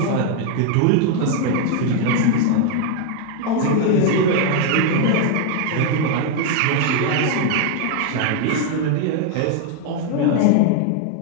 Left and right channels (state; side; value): different; both; correlation 0.00